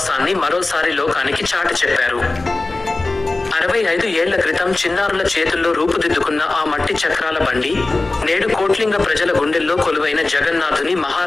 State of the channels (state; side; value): quieter; right; 3.2 dB